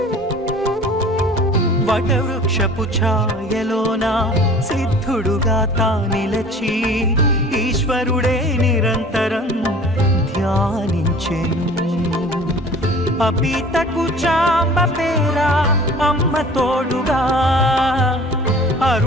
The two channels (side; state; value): both; normal; correlation 0.46